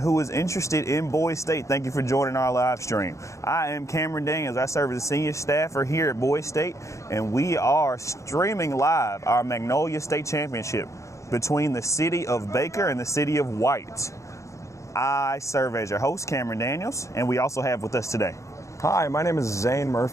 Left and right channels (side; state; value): right; late; 0.15 ms